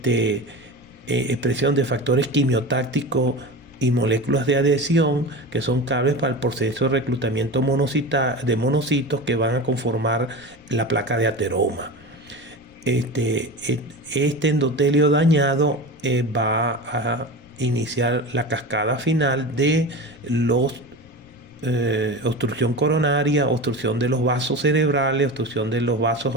expresión de factores quimiotácticos y moléculas de adhesión que son claves para el proceso de reclutamiento de monocitos que van a conformar la placa de ateroma. Este endotelio dañado va a iniciar la cascada final de obstrucción coronaria, obstrucción de los vasos cerebrales, obstrucción de los vasos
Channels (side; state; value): left; noise; rumble, 27 dB below the sound